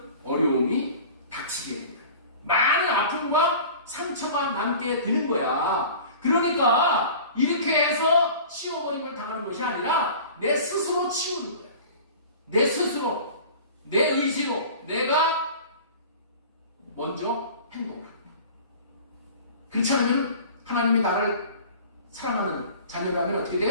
어려움이 닥치게 됩니다. 많은 아픔과 상처가 남게 되는 거야. 그러니까 이렇게 해서 치워버림을 당하는 것이 아니라 내 스스로 치우는 거야. 내 스스로, 내 의지로 내가 먼저 행동을 합니다. 그렇지 않으면 하나님이 나를 사랑하는 자녀라면 어떻게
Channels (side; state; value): both; inverted; correlation -0.41